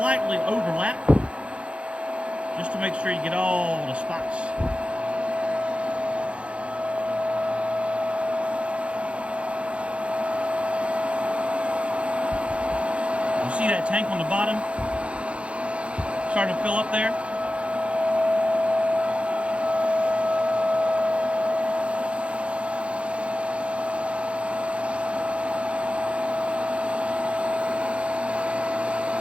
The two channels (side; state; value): left; late; 0.060 ms